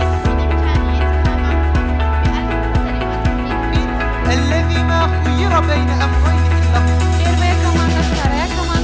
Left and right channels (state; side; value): identical; both; correlation 1.00